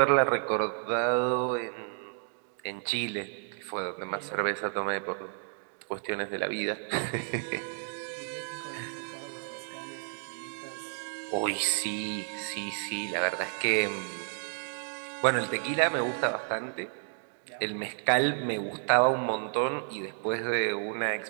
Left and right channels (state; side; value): silent; left; digital silence